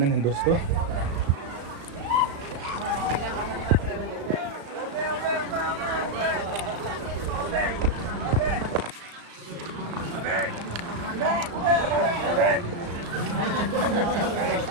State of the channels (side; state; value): left; late; 35 ms